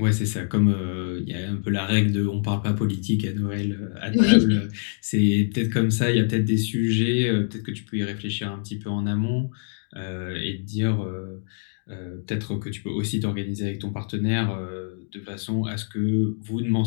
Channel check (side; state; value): right; silent; digital silence